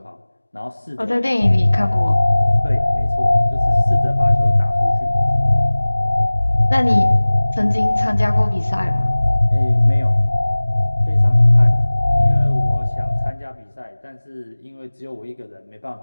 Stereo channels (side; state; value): both; inverted; correlation -1.00